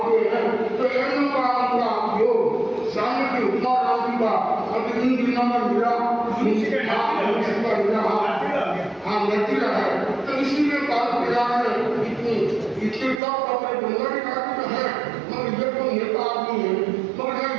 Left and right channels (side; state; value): left; drops out; at 13.2 s